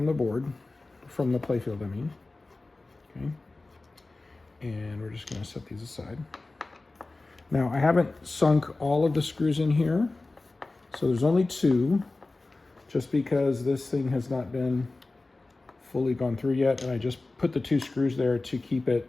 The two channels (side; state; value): right; quieter; 3.2 dB